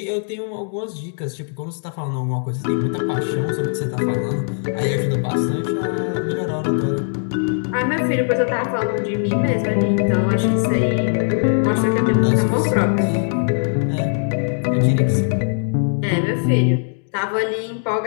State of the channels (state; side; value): silent; right; digital silence